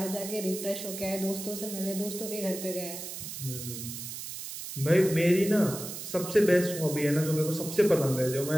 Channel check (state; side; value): noise; right; hiss, 8 dB below the sound